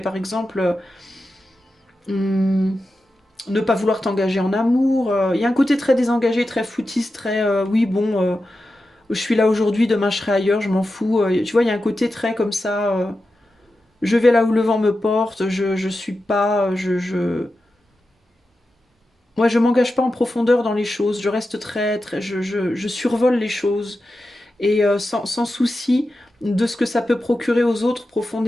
exemple, hum, ne pas vouloir t'engager en amour, il y a un côté très désengagé, très foutiste, très, oui, bon. Je suis là aujourd'hui, demain je serai ailleurs, je m'en fous. Tu vois, il y a un côté très comme ça. Je vais là où le vent me porte, je suis pas. Moi, je m'engage pas en profondeur dans les choses. Je reste je survole les choses. Et sans souci de ce que ça peut procurer aux autres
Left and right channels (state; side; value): normal; both; correlation 0.91